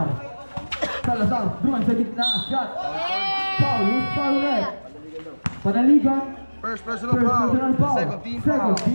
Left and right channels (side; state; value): both; inverted; correlation -1.00